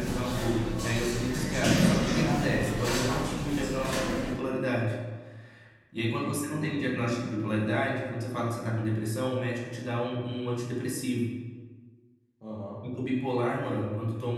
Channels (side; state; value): both; identical; correlation 1.00